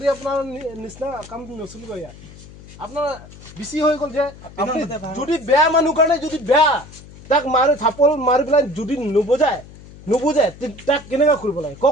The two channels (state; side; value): noise; left; hum, 19 dB below the sound